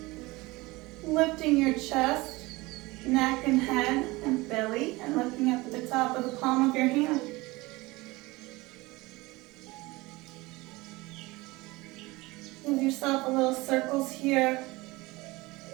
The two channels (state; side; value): quieter; left; 21.9 dB